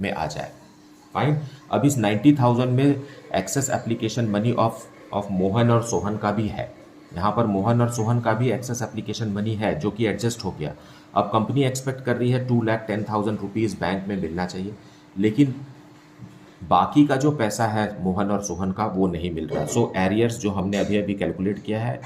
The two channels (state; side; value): identical; both; correlation 1.00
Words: में आ जाए. फाइन. अब इस 90,000 में excess application money of Mohan और सोहन का भी है. यहाँ पर मोहन और सोहन का भी एक्सेस एप्लीकेशन मनी है जो कि एडजस्ट हो गया. अब कंपनी एक्सपेक्ट कर रही है 2,10,000 रुपीज़ बैंक में मिलना चाहिए, लेकिन बाकी का जो पैसा है मोहन और सोहन का वो नहीं मिल रहा. सो एरियर्स जो हमने अभी अभी कैलकुलेट किया है